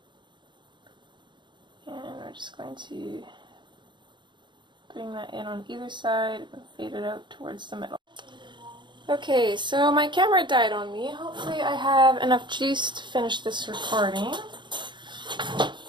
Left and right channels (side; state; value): left; late; 0.23 ms